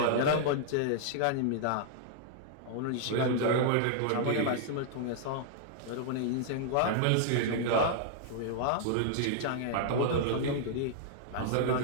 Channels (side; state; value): both; different; correlation -0.01